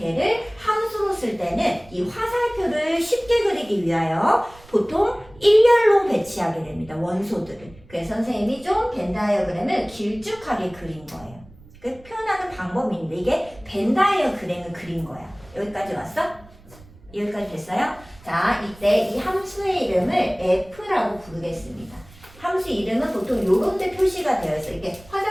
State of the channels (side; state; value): right; noise; rumble, 23 dB below the sound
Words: 함수로 쓸 때는 이 화살표를 쉽게 그리기 위하여 보통 일렬로 배치하게 됩니다. 원소들을. 그래서 선생님이 좀 벤 다이어그램을 길쭉하게 그린 거예요. 그 표현하는 방법이 있는데 이게 벤 다이어그램을 그린 거야. 여기까지 왔어? 여기까지 됐어요? 자, 이때 이 함수의 이름을 f라고 부르겠습니다. 함수 이름은 보통 요런 데 표시가 되어 있어요. 이게